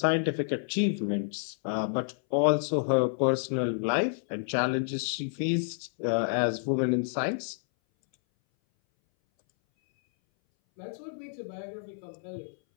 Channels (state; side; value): silent; right; 58 dB below the other